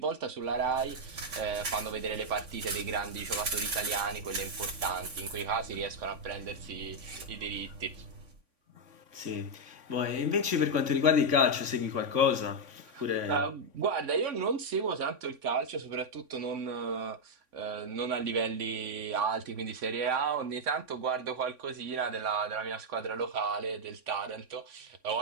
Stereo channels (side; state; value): left; late; 3.6 ms